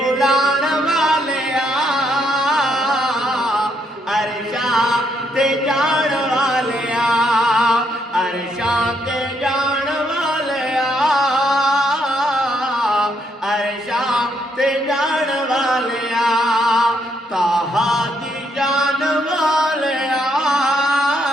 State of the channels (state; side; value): normal; both; correlation 0.74